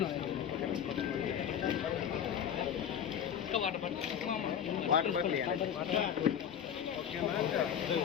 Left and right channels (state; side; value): quieter; right; 8.8 dB